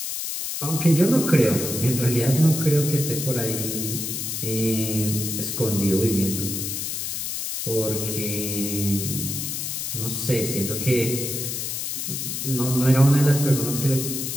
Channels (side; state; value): left; noise; hiss, 3 dB below the sound